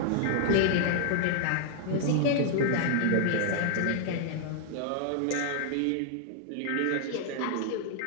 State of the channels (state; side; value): different; both; correlation 0.00